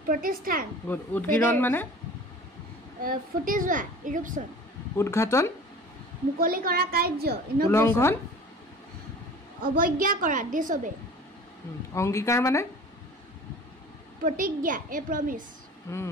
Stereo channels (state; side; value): normal; both; correlation 0.42